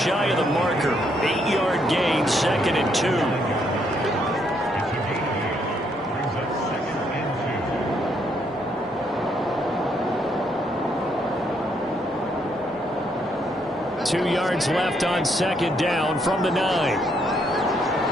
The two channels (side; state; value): both; normal; correlation 0.73